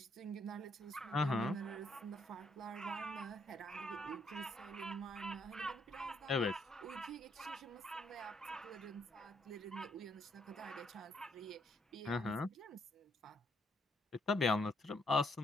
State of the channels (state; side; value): normal; both; correlation 0.72